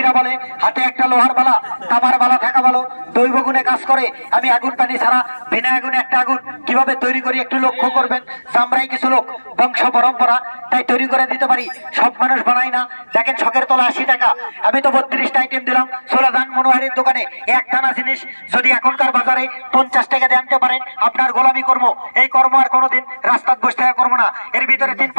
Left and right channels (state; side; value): inverted; both; correlation -1.00